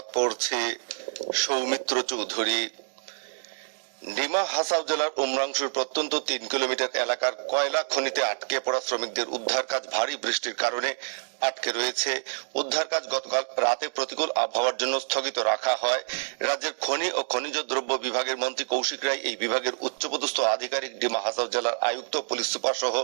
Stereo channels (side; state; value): left; silent; digital silence